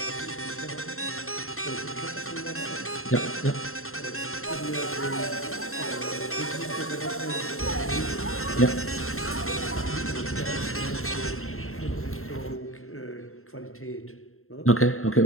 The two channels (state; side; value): late; right; 0.62 ms